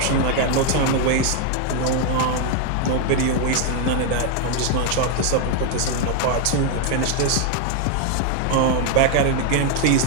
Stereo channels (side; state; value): both; different; correlation 0.01